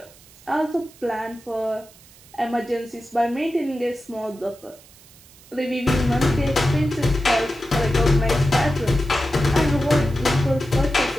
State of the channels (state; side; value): noise; right; hiss, 24 dB below the sound